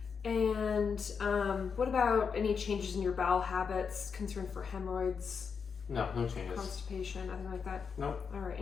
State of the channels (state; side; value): quieter; right; 6.0 dB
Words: And what about any changes in your bowel habits, concern for hemorrhoids, No changes. constipation, nothing like that? Nope. All right,